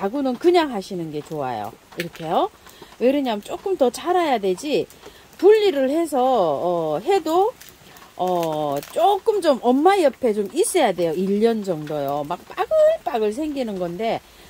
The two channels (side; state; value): both; identical; correlation 1.00